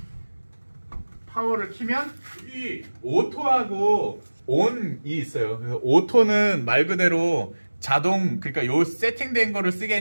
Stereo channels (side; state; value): both; inverted; correlation -1.00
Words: 파워를 키면 이 오토하고 온이 있어요. 그래서 오토는 말 그대로 자동, 그러니까 요 세팅된 거를